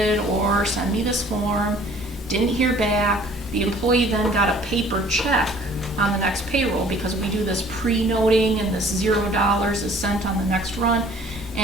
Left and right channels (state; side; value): normal; both; correlation 0.54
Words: or send me this form. Didn't hear back. The employee then got a paper check on the next payroll, because we do this pre-noting and this $0 is sent on the next run.